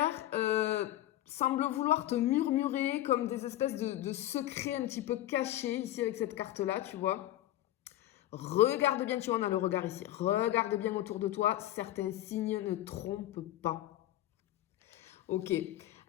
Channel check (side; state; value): right; quieter; 14.2 dB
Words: semble vouloir te murmurer comme des espèces de secrets un petit peu cachés ici avec cette carte-là, tu vois. Regarde bien, tu vois, on a le regard ici. Regarde bien autour de toi, certains signes ne trompent pas. Ok.